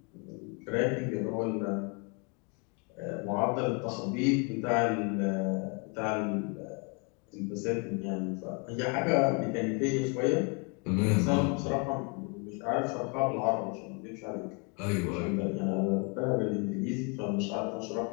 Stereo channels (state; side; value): quieter; right; 33.7 dB